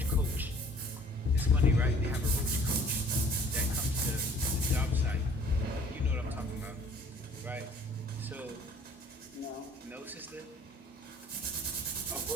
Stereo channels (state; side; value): normal; both; correlation 0.54